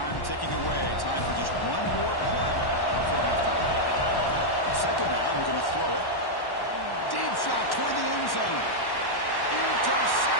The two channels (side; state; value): right; late; 1.1 ms